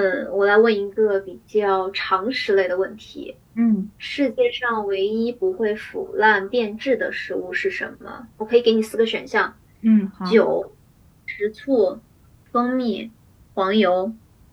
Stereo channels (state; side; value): identical; both; correlation 1.00